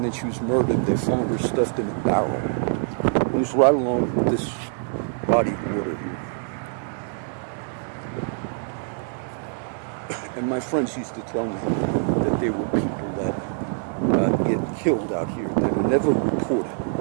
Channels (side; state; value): left; silent; 62 dB below the other